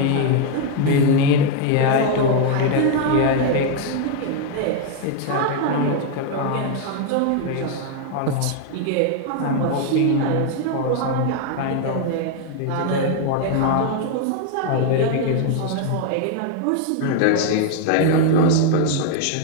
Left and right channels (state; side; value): different; both; correlation 0.01